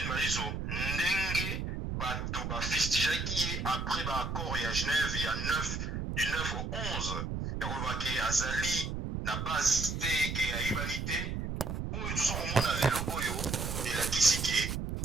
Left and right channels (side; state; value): right; noise; rumble, 3 dB below the sound